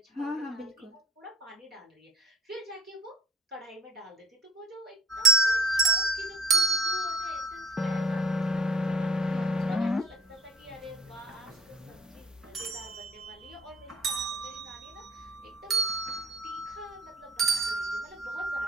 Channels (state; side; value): normal; both; correlation 0.52